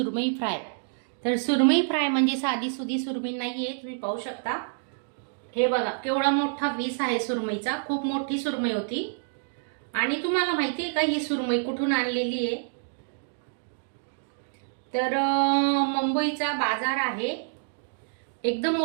फ्राय. तर सुरमई फ्राय म्हणजे साधी सुधी सुरमई नाहीये, तुम्ही पाहू शकता. हे बघा केवढा मोठा पीस आहे सुरमईचा, खूप मोठी सुरमई होती. आणि तुम्हाला माहिती आहे का ही सुरमई कुठून आणलेली आहे? तर मुंबईचा बाजार आहे, एकदम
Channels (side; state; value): left; silent; digital silence